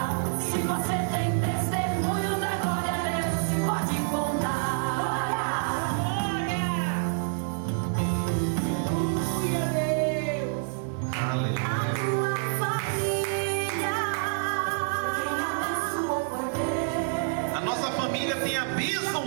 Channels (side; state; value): left; silent; 60 dB below the other